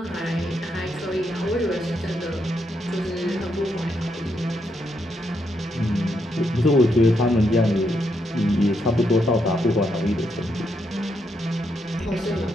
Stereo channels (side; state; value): both; normal; correlation 0.79